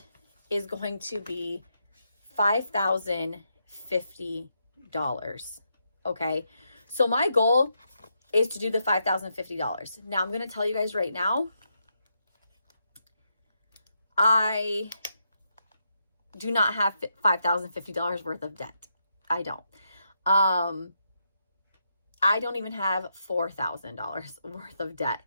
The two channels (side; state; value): both; inverted; correlation -0.81